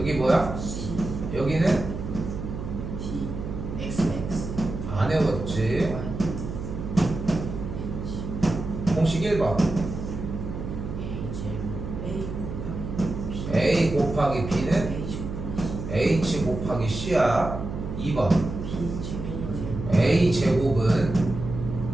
뭐야? 여기는 안 외웠지. 공식 1번 A 곱하기 B는 H 곱하기 C야. 2번 A 제곱은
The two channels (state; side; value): noise; right; hum, 6 dB below the sound